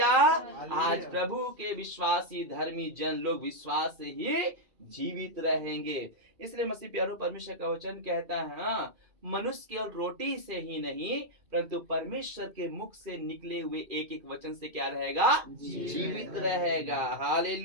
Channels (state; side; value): late; left; 2.5 ms